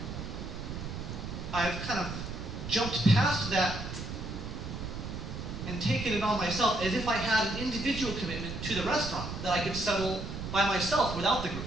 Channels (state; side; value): noise; right; rumble, 7 dB below the sound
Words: I've kind of jumped past that and taken it on myself as if I had an individual commitment to the restaurant that I could settle by myself without the group.